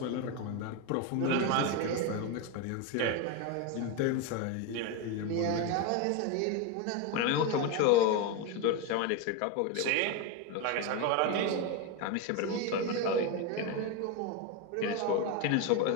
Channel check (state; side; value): different; both; correlation 0.03